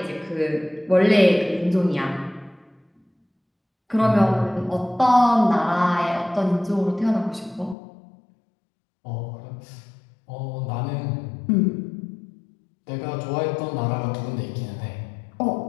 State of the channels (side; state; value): right; drops out; at 7.8 s